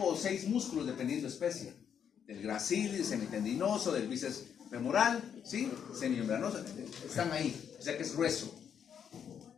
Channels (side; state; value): right; quieter; 8.1 dB